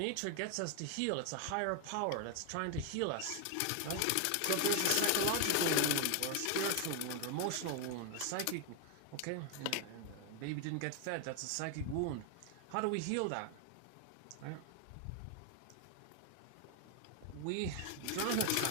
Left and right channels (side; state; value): both; different; correlation 0.00